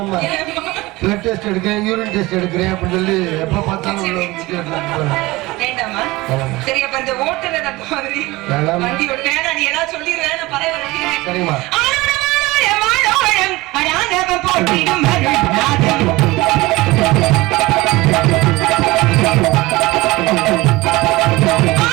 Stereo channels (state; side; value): quieter; left; 20.6 dB